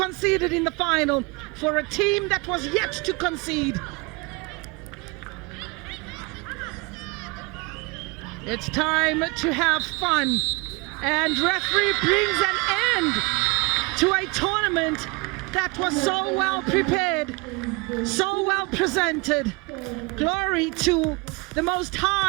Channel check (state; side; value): quieter; left; 26.7 dB